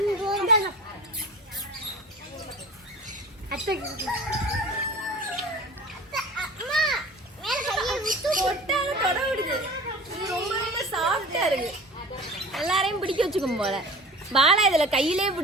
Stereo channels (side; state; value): both; normal; correlation 0.38